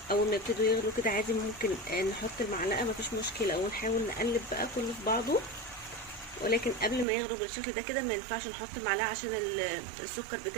اول ما يبتدوا يغلوا كده عادي ممكن نحط المعلقه، مفيش مشكله، ونحاول نقلب بقى كله في بعضه. ولكن قبل ما يغلوا بالشكل ده كده ما ينفعش نحط المعلقه عشان السكر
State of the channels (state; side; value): drops out; left; at 7.1 s